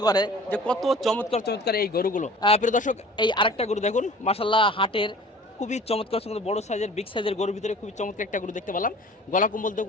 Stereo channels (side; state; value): both; normal; correlation 0.46